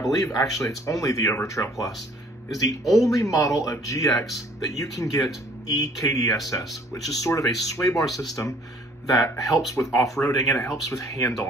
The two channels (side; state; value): both; normal; correlation 0.57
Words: actually it's only the Overtrail Plus, is the only model of GX that you can get EKDSS, which is sort of a sway bar system that helps with off-roading and it helps with